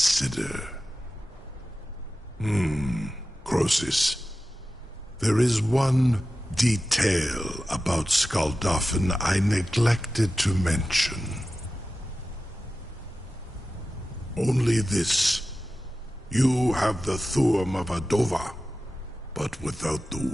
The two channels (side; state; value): both; normal; correlation 0.94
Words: Croesus. There is one detail about Skuldafn I neglected to mention. Only this. You have the Thuum of Adova, but without the